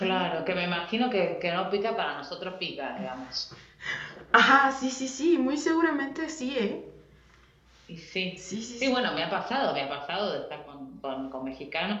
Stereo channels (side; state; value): both; identical; correlation 1.00